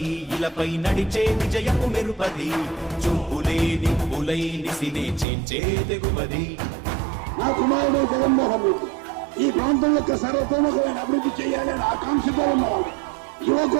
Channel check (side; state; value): left; drops out; at 5.2 s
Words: ఇలపై నడిచే విజయము మెరుపది చూపులే నిప్పులై నిసినే చీల్చే తెగువది నా కుమారుడు జగన్మోహన్ రెడ్డి ఈ ప్రాంతం యొక్క సర్వతోముఖమైన అభివృద్ధి చేయాలని ఆకాంక్షతో ఉన్నవాడు